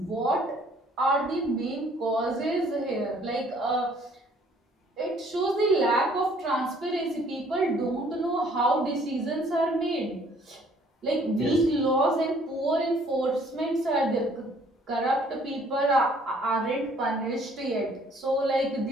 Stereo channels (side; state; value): both; normal; correlation 0.59